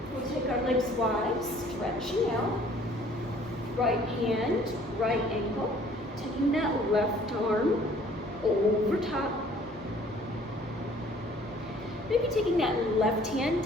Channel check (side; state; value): both; normal; correlation 0.56